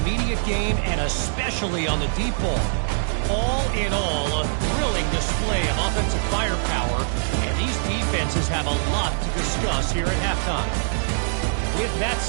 game, and especially on the deep ball. All in all, a thrilling display of offensive firepower, and these defenses have a lot to discuss here at halftime. With that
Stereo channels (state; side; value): silent; left; 59 dB below the other